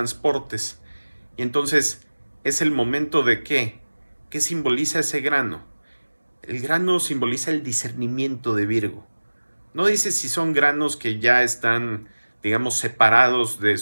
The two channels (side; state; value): both; inverted; correlation -1.00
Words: Y entonces es el momento de ¿qué? ¿Qué simboliza ese grano? El grano simboliza el discernimiento de Virgo. No dice si son granos que ya están, digamos, separados